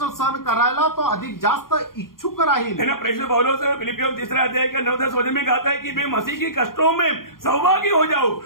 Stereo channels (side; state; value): right; late; 0.92 ms